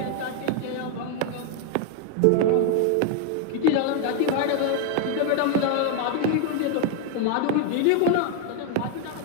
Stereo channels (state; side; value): different; both; correlation 0.01